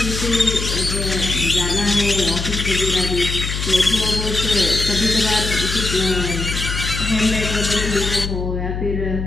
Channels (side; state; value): left; noise; hum, 4 dB below the sound